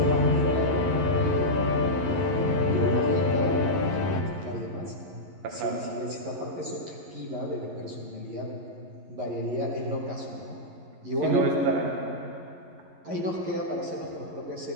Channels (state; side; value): late; left; 11 ms